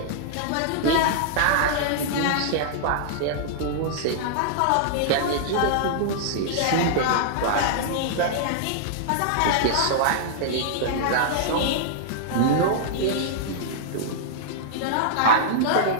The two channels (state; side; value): different; both; correlation -0.01